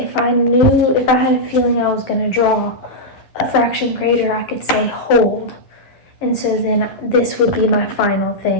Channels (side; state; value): right; late; 11 ms